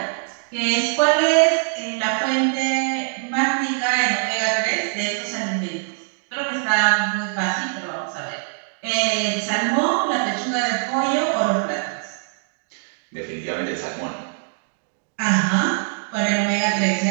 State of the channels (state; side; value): silent; left; 64 dB below the other